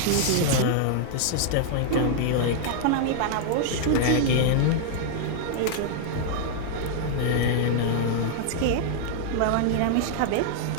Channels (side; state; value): both; different; correlation -0.01